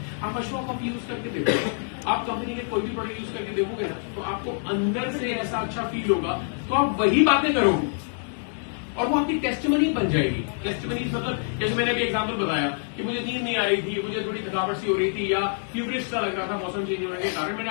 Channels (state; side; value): silent; right; 61 dB below the other